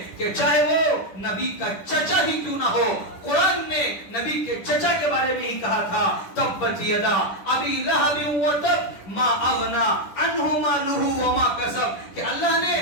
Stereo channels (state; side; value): late; right; 10 ms